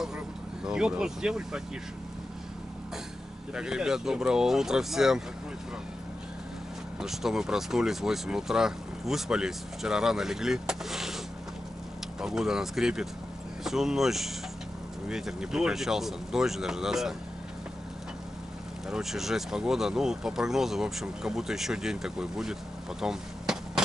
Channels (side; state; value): both; normal; correlation 0.91